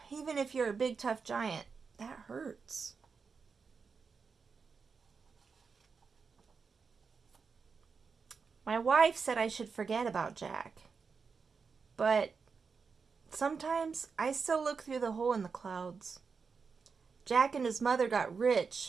Even if you're a big, tough giant, that hurts. My wife said I should forget about Jack. But sometimes I still look through the hole in the clouds. Jack and his mother got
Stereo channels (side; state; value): left; quieter; 5.3 dB